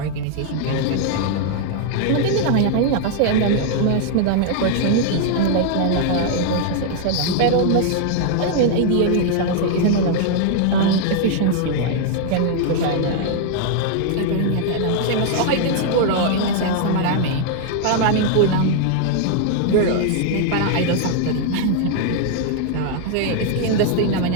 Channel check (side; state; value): both; different; correlation 0.00